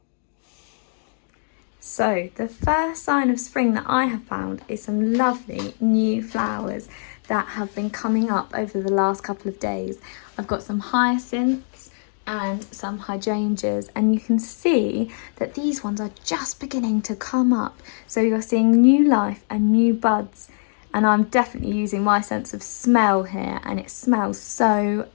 So the first sign of spring that I have found is some lovely new flowers that have been coming up over the last couple of days. I've got some hyacinths and some hydrangeas, and you can see that these ones are just beginning to come up. So you're seeing new life and new buds, and I'm definitely using my sense of smell here, and it smells so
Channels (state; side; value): silent; right; digital silence